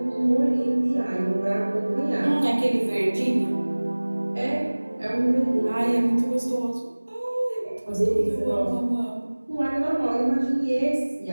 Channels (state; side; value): inverted; both; correlation -1.00